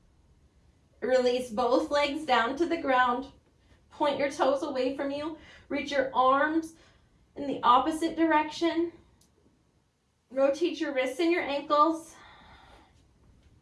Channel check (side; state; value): both; identical; correlation 1.00